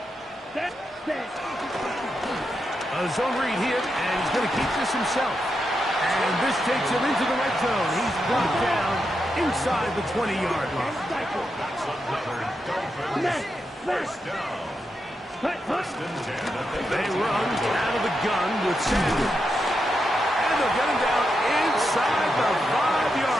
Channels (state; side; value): normal; both; correlation 0.85